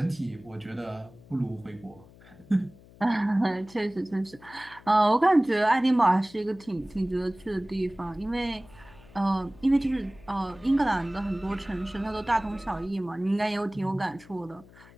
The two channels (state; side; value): noise; left; hum, 23 dB below the sound